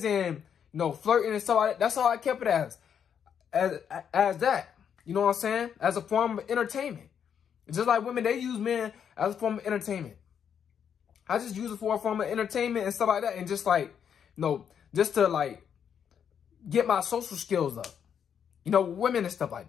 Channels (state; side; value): quieter; right; 8.1 dB